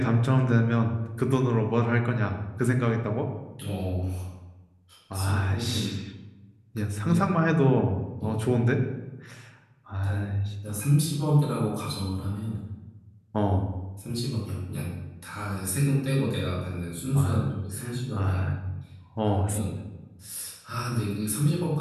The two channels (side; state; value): both; identical; correlation 1.00